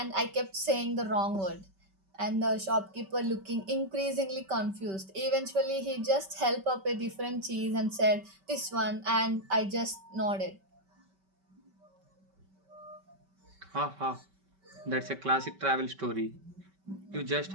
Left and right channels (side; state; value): left; late; 5.2 ms